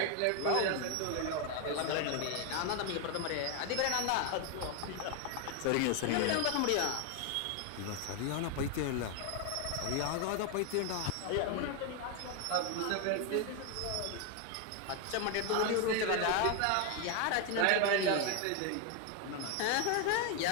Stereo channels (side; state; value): both; different; correlation 0.01